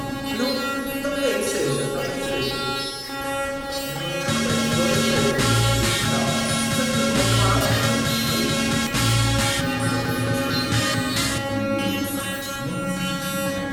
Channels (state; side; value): identical; both; correlation 1.00